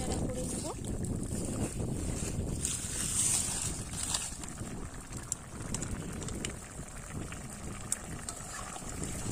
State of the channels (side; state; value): both; identical; correlation 1.00